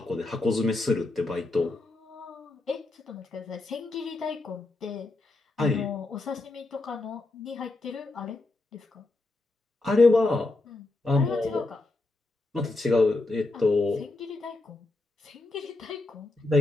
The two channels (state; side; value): quieter; right; 3.1 dB